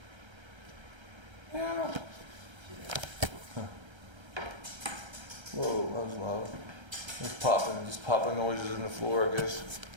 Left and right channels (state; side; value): late; left; 1.3 ms